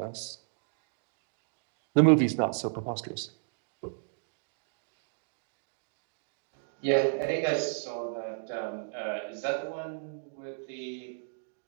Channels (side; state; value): left; silent; digital silence